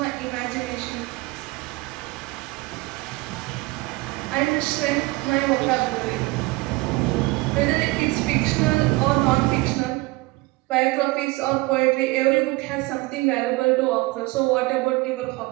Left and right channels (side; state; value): left; quieter; 22.5 dB